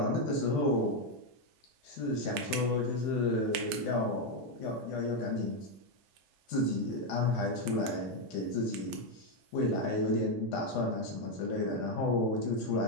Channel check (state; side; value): normal; both; correlation 0.04